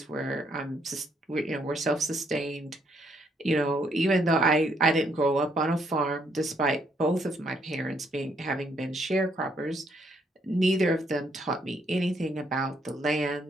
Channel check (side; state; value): both; normal; correlation 0.72